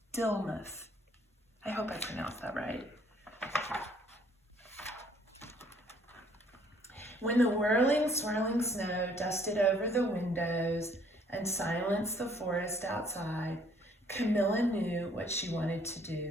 Dillemuth. I hope I pronounced that right. When the whirling, swirling snow dusted over the windows and silenced the forest outside, Camilla knew what she wanted to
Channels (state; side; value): normal; both; correlation 0.62